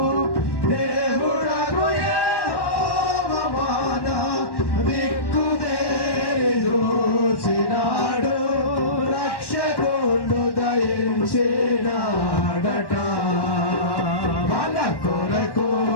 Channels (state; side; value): late; right; 1.1 ms